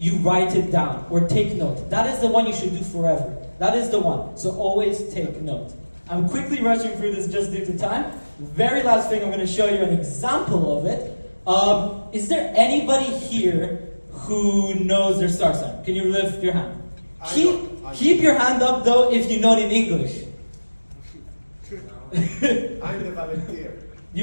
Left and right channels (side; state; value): both; inverted; correlation -1.00